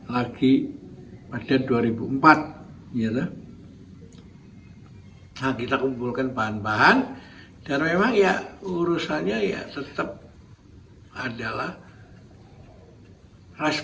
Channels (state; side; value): identical; both; correlation 1.00